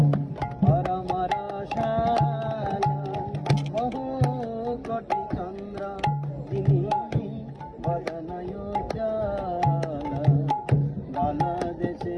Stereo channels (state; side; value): identical; both; correlation 1.00